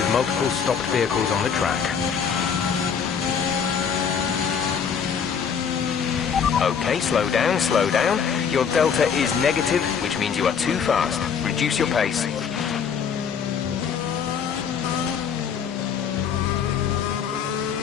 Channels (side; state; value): right; quieter; 7.0 dB